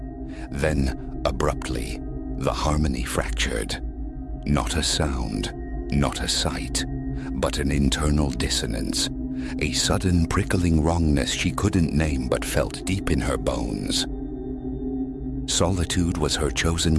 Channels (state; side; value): identical; both; correlation 1.00